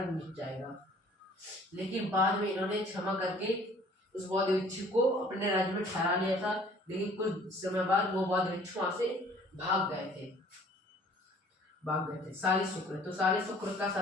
मिट जाएगा, लेकिन बाद में इन्होंने क्षमा करके उस बौद्ध भिक्षु को अपने राज्य में ठहरा लिया था। लेकिन कुछ समय बाद वो बौद्ध भिक्षु वहां से भाग गए थे। साली शुक्र, तो साली शुक्र का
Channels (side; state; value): both; normal; correlation 0.54